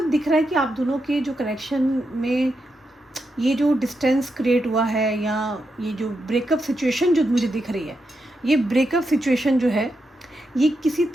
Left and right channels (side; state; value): both; normal; correlation 0.85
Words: दिख रहा है कि आप दोनों के जो कनेक्शन में ये जो डिस्टेंस क्रिएट हुआ है, या ये जो ब्रेकअप सिचुएशन जो मुझे दिख रही है, ये ब्रेकअप सिचुएशन जो है, ये किसी